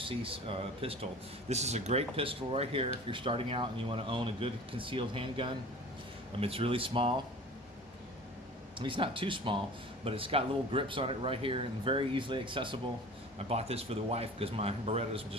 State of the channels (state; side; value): normal; both; correlation 0.41